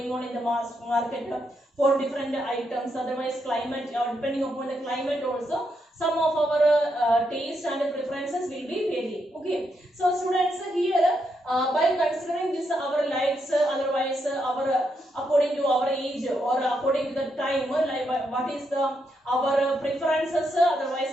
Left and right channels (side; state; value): both; normal; correlation 0.80